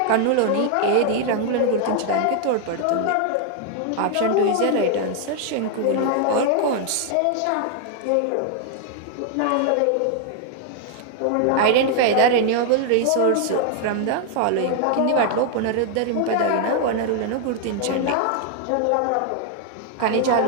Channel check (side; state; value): both; different; correlation 0.00